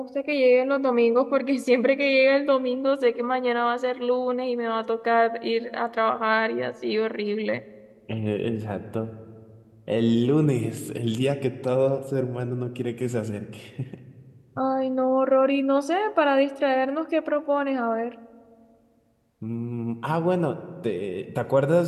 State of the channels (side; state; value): both; identical; correlation 1.00